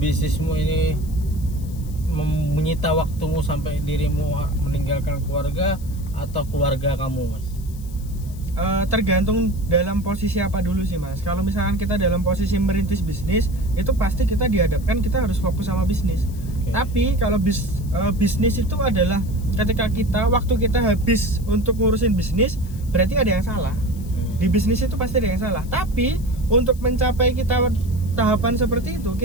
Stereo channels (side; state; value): left; noise; hiss, 22 dB below the sound